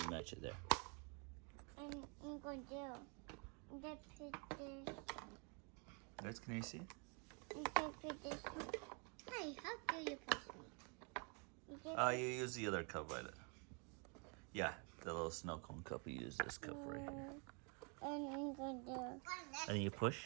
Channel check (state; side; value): quieter; left; 35.4 dB